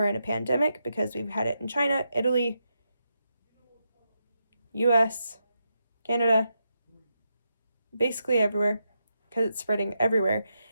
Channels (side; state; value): both; inverted; correlation -0.84